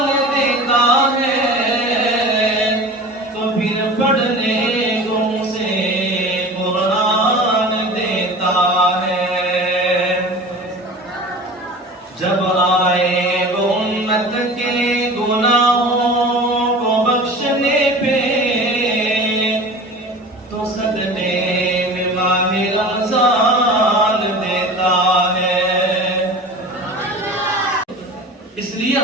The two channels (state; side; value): normal; both; correlation 0.38